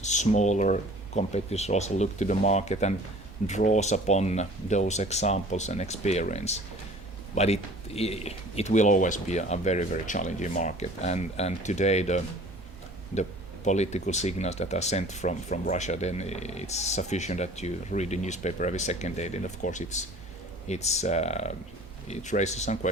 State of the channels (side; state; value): both; normal; correlation 0.47